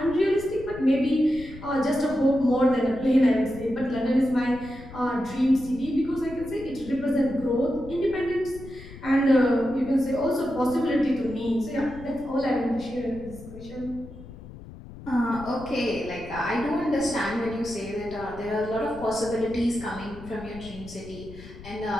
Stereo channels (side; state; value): left; noise; rumble, 16 dB below the sound